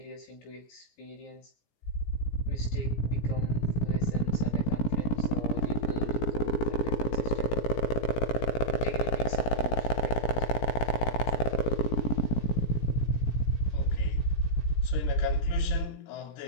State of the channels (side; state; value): right; late; 17 ms